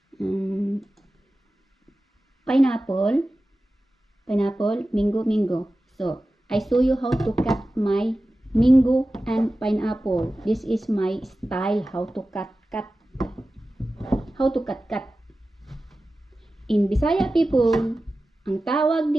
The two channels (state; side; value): normal; both; correlation 0.95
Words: pineapple, mango. So I show you how to cut my mango and pineapple. This is my style how to cut. In Bisaya people, ang tawag